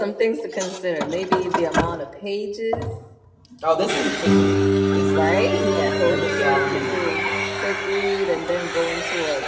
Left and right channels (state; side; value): identical; both; correlation 1.00